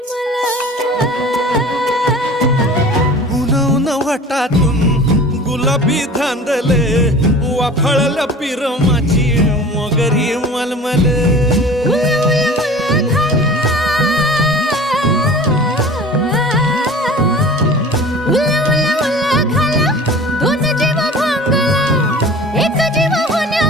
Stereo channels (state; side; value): normal; both; correlation 0.41